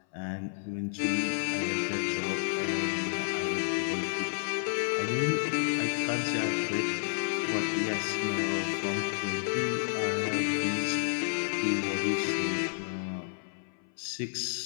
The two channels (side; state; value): right; silent; 57 dB below the other